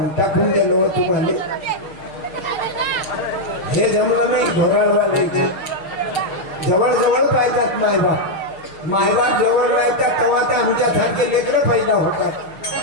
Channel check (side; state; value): right; late; 6.6 ms